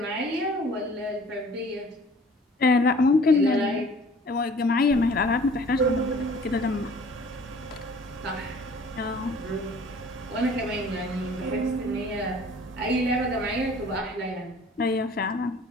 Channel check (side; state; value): both; normal; correlation 0.51